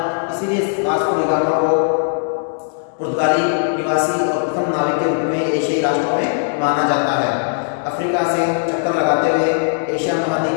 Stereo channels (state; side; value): silent; right; 62 dB below the other